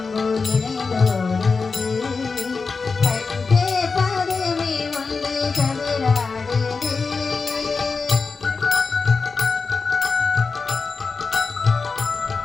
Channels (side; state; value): right; quieter; 4.6 dB